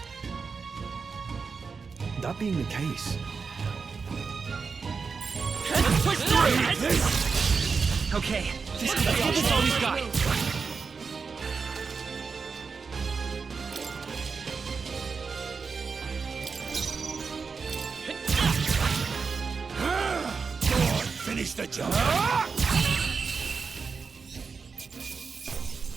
That being the case, Let's push through! Okay, this is all we've got. Go on, finish the job.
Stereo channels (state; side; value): quieter; left; 5.2 dB